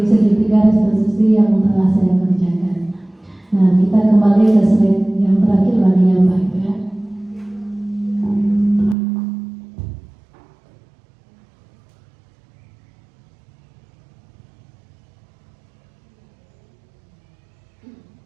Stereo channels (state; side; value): drops out; left; at 9.0 s